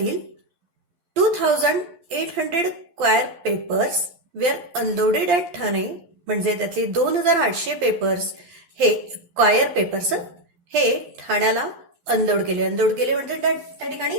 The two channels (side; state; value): left; late; 11 ms